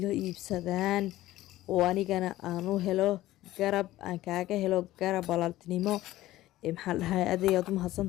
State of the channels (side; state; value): right; quieter; 15.8 dB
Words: iibsadaan oo anigana aan u helo garab aan kaaga helo garab walaaltinimo maxaa dhahay adeeyaad u